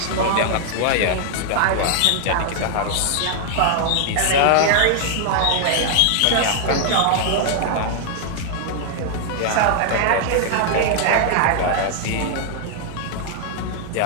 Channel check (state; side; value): different; both; correlation 0.00